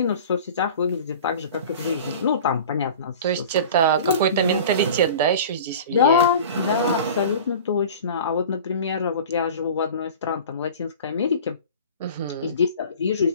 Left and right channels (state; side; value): inverted; both; correlation -0.39